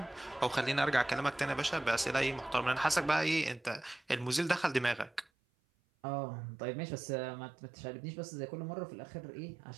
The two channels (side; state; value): left; drops out; at 5.2 s